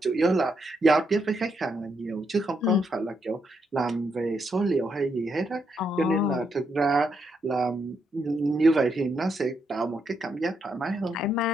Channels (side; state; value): both; normal; correlation 0.79